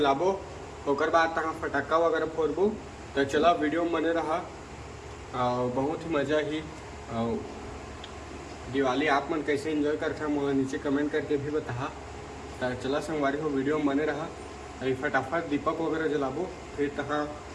ओकर बाद तहाँ फटाका वगैरह फोड़बो। तो चला वीडियो में बने रहा और बहुत ही मज़ा ही। और दिवाली आप मन कैसे एंजॉय करते हैं मुझे नीचे कमेंट करके भी बता। तो चला संगवारी हो वीडियो में बने रहा। अभी फटाफट दीपक वगैरह जलाबो, फिर तहाँ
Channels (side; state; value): both; identical; correlation 1.00